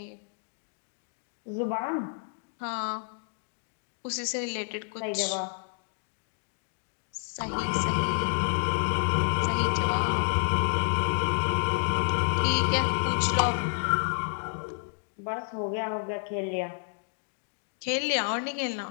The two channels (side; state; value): right; silent; digital silence